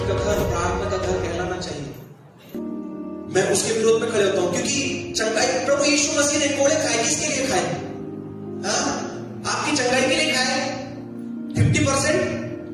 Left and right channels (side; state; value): both; identical; correlation 1.00